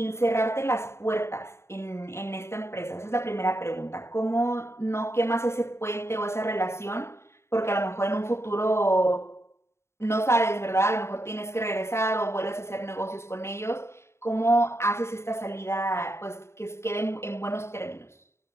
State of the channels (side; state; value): right; late; 0.13 ms